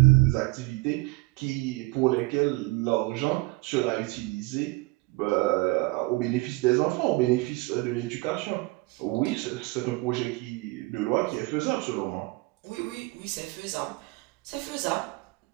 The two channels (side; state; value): left; quieter; 23.2 dB